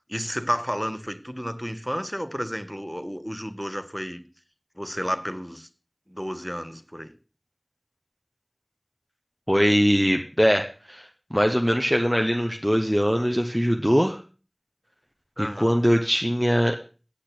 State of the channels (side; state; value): both; identical; correlation 1.00